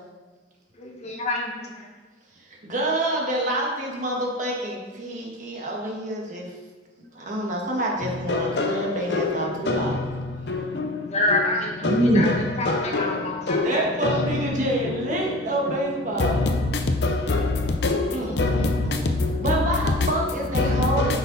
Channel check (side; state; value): both; normal; correlation 0.36